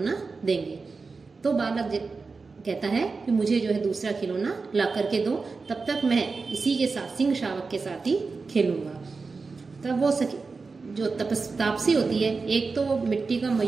देंगे। तो बालक कहता है कि मुझे जो है दूसरा खिलौना ला करके दो, तब तक मैं इसी के साथ, सिंह शावक के साथ ही खेलूंगा। तब वो जो तापसी होती है, एक तो वो मिट्टी का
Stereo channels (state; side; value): quieter; left; 4.3 dB